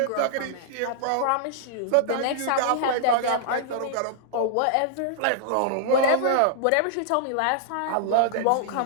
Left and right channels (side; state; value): both; different; correlation -0.01